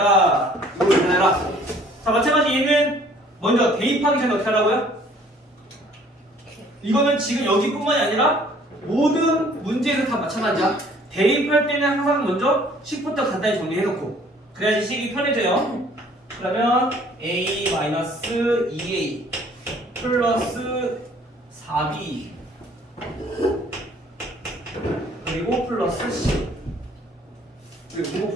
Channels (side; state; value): both; normal; correlation 0.57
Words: 이걸 구해라. 자, 마찬가지 얘는 먼저 대입하기 전에 어떻게 하라고요? 이거는 지금 여기뿐만이 아니라 모든 문제에서 다 마찬가지야. 대입할 때는 항상 먼저 식부터 간단히 정리해놓고 그래야지 식이 편해져요. 그러면 A-2A 플러스 4B 그리고 플러스 C.